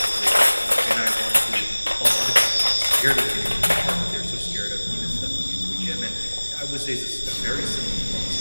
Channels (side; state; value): both; inverted; correlation -1.00